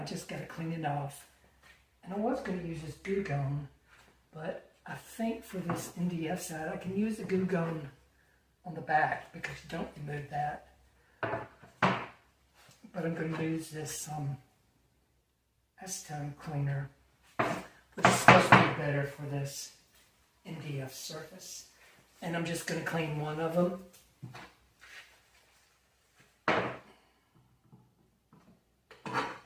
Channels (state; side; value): identical; both; correlation 1.00